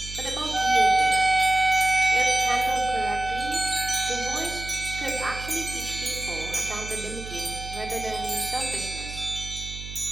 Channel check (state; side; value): noise; right; hum, 11 dB below the sound